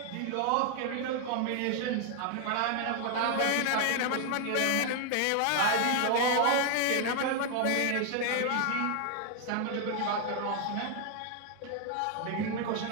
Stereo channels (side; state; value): both; different; correlation 0.00